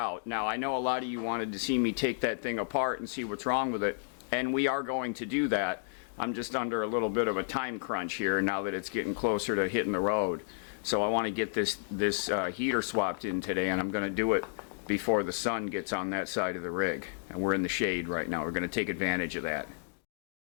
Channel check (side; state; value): right; silent; digital silence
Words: Now, I know a lot of you wanted to see me take that thing apart and see what's wrong with it, and we are going to do that. I'm just under a little bit of a time crunch here now that it's getting closer to hitting the road. So I want to get this heater swapped in today, and I'm going to do it before the sun gets on that side of the rig. And we're in the shade right now. We're going to take advantage of that.